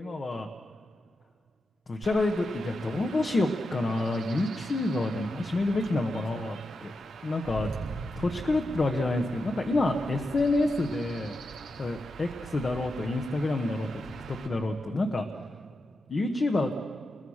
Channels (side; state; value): both; normal; correlation 0.88